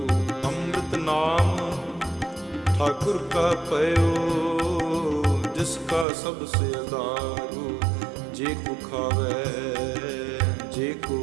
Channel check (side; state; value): left; drops out; at 6.1 s